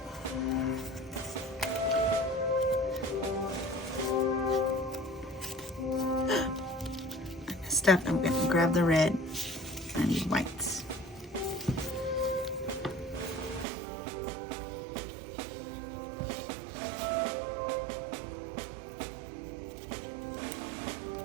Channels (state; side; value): drops out; left; at 13.7 s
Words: Step, I'm going to grab the red. I need whites.